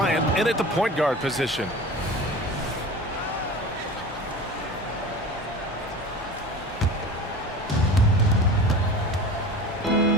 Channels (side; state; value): both; normal; correlation 0.36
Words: in at the point guard position.